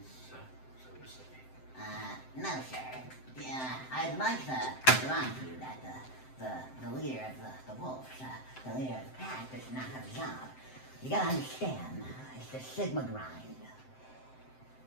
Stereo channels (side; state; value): right; late; 7.7 ms